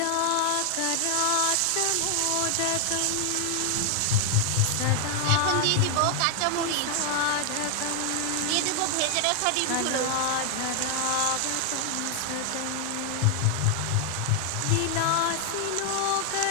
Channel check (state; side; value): different; both; correlation 0.00